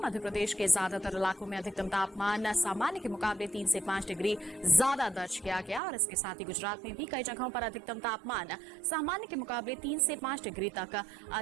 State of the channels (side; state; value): left; drops out; at 5.8 s